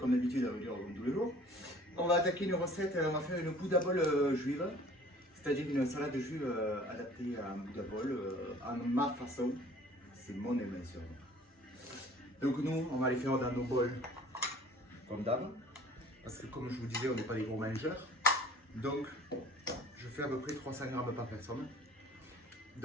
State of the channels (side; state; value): both; normal; correlation 0.51